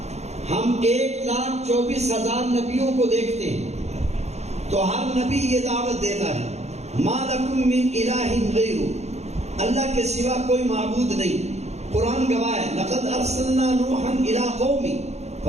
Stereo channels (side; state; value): left; late; 0.32 ms